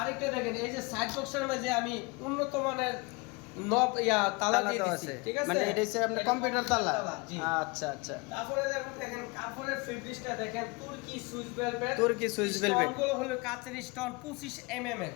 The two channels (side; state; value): right; quieter; 27.2 dB